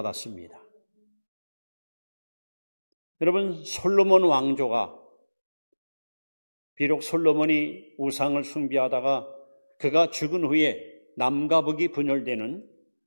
여러분, 솔로몬 왕조가 비록 솔로몬이 우상을 숭배하다가 그가 죽은 후에 남과 북이 분열되는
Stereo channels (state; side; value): inverted; both; correlation -1.00